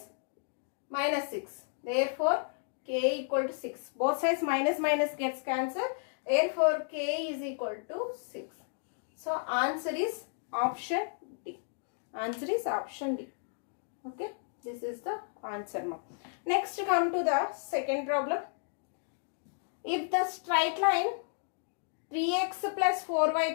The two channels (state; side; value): silent; right; digital silence